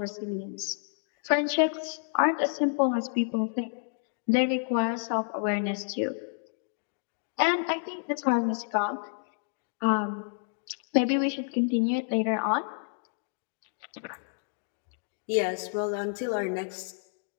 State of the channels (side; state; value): right; silent; digital silence